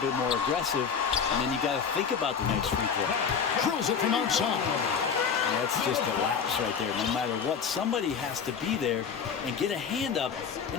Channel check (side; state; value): right; quieter; 6.6 dB